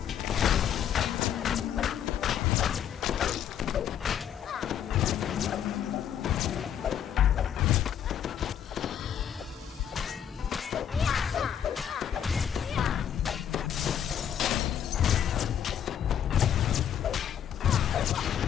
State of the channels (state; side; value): quieter; right; 9.2 dB